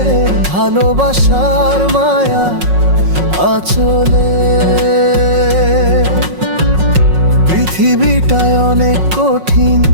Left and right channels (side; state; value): left; late; 5.5 ms